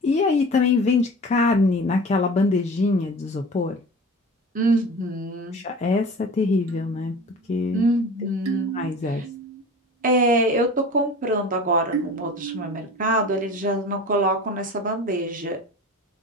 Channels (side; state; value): both; normal; correlation 0.37